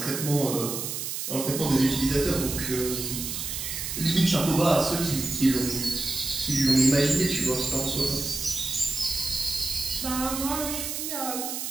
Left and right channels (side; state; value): right; noise; hiss, 4 dB below the sound